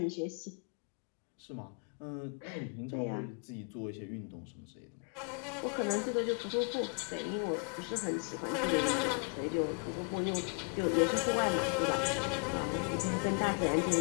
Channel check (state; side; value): quieter; right; 38.1 dB